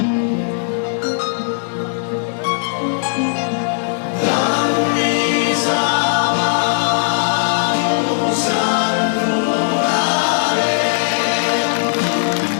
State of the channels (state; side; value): silent; right; digital silence